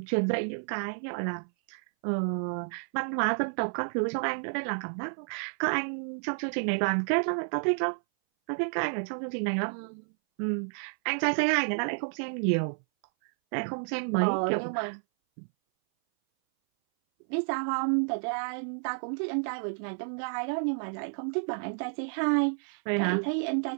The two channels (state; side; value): silent; left; 57 dB below the other